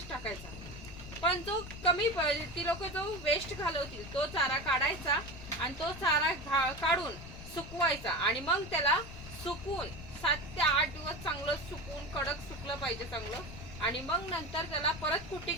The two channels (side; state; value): left; noise; rumble, 12 dB below the sound